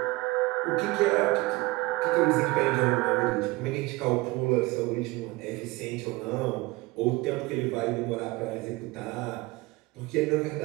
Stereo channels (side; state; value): left; quieter; 22.4 dB